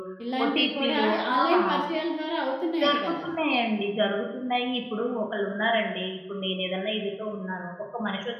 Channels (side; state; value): both; identical; correlation 1.00